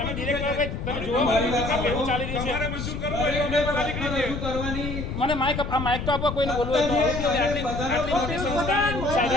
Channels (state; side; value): noise; left; rumble, 5 dB below the sound